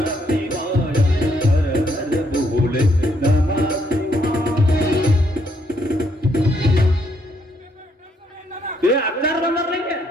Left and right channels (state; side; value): normal; both; correlation 0.72